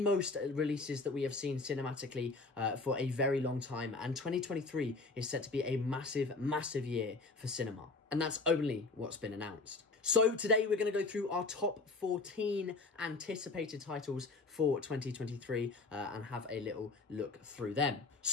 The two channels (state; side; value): quieter; right; 3.7 dB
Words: releases that we have seen cinematically for a very long time, and 2023 is set to be a massive year for cinema, and that's only what's been announced. So today we're going to go through our top 14 anticipated titles for 2023 and have a little look through them.